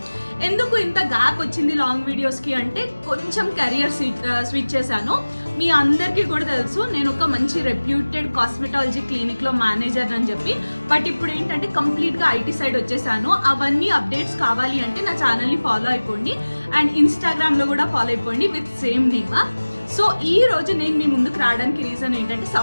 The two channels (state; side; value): inverted; both; correlation -1.00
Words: ఎందుకు ఇంత గ్యాప్ వచ్చింది లాంగ్ వీడియోస్ కి అంటే కొంచెం కెరియర్ స్విచ్ చేశాను. మీ అందరికీ కూడా తెలుసు నేను ఒక మంచి రెప్యూటెడ్ కాస్మెటాలజీ క్లినిక్ లో మేనేజర్ అని చెప్పి. బట్ ఇప్పుడు ఏంటంటే కంప్లీట్ గా ఐటీ సైడ్ వచ్చేసాను. అవన్నీ అప్డేట్స్ కావాలి అంటే నా ఛానల్ ని ఫాలో అయిపోండి అండ్ ఇన్స్టాగ్రామ్ లో కూడా ఫాలో అయిపోండి విత్ సేమ్ నేమ్. సో ఈ రోజు నేను మీ ముందుకు రావడానికి రీజన్ ఏంటంటే